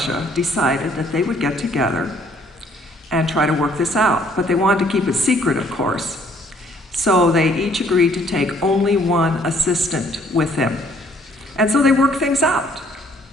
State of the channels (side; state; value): both; normal; correlation 0.63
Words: decided that they would get together and try to work this out. But they wanted to keep it secret, of course. So they each agreed to take only one assistant with them. And so they work things out.